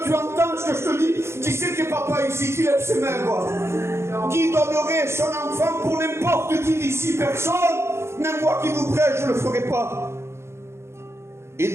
Tu entends ce que je te dis? Qui c'est qui est papa ici? Qui lève ses mains, quoi? Qui donnerait son enfant pour n'importe qui d'ici? Personne. Même moi qui vous prêche, je ne le ferai pas. Il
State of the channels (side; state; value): left; late; 0.13 ms